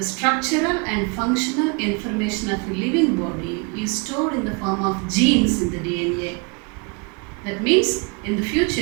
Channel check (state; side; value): quieter; left; 32.2 dB